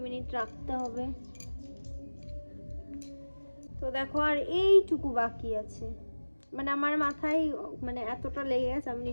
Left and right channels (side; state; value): both; inverted; correlation -1.00